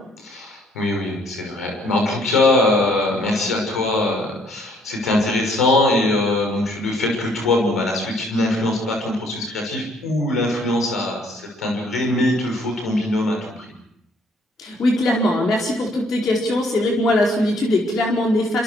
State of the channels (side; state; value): both; normal; correlation 0.65